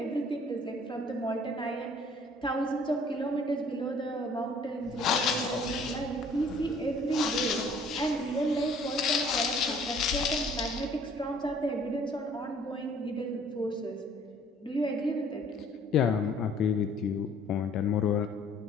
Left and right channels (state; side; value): normal; both; correlation 0.56